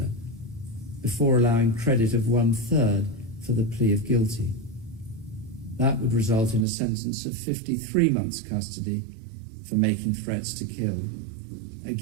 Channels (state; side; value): drops out; left; at 6.7 s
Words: before allowing credit of 1/3 for the plea of guilty. That would result in a sentence of 53 months custody for making threats to kill,